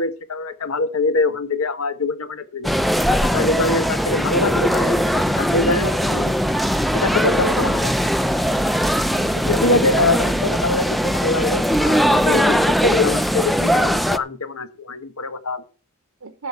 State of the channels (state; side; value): normal; both; correlation 0.52